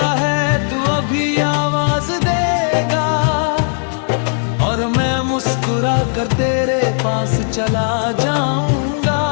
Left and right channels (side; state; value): right; silent; digital silence